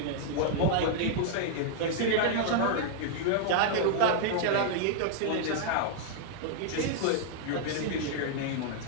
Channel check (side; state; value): both; different; correlation -0.01